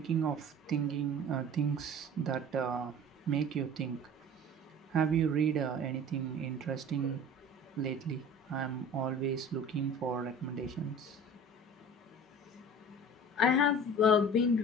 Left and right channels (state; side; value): normal; both; correlation 0.41